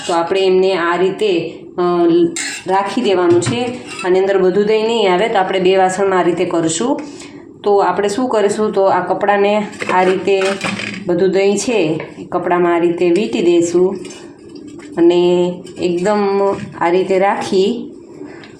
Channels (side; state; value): both; identical; correlation 1.00